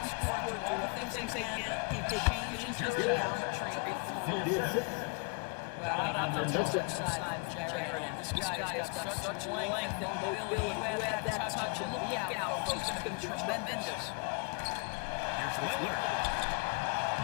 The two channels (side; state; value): right; quieter; 34.2 dB